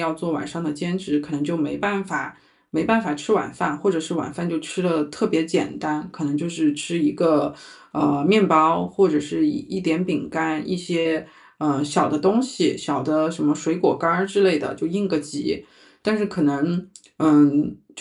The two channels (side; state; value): both; identical; correlation 1.00